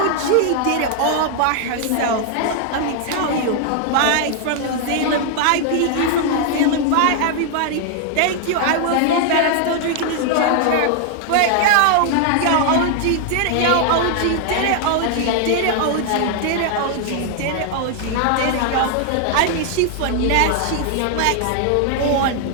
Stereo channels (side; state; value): both; different; correlation 0.00